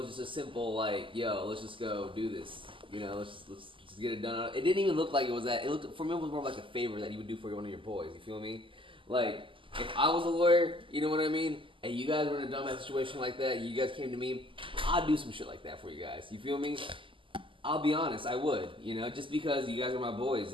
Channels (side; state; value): left; late; 0.25 ms